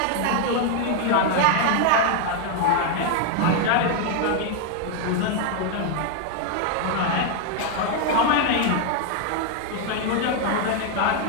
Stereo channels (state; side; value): different; both; correlation 0.01